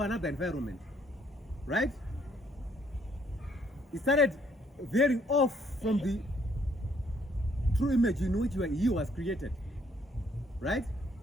another environment, right? He started veering off from the true image in which he was created, right?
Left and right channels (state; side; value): normal; both; correlation 0.67